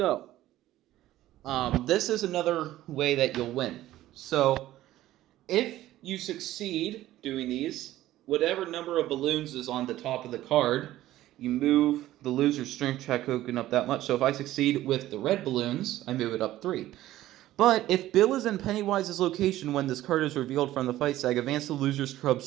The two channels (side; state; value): left; quieter; 14.7 dB